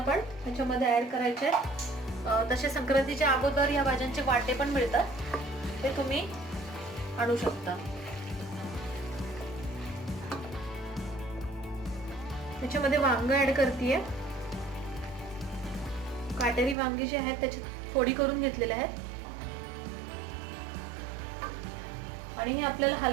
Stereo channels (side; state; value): left; drops out; at 16.8 s